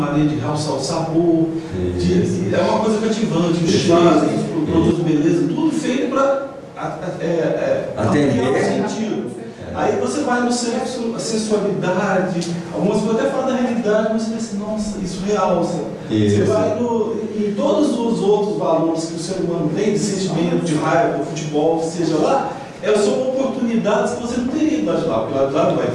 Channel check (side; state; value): both; identical; correlation 1.00